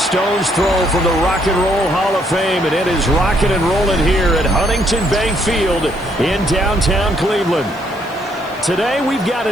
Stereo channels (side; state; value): right; noise; hiss, 26 dB below the sound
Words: throw from the Rock and Roll Hall of Fame, and it is rocking and rolling here at Huntington Bank Field in downtown Cleveland. Today we've got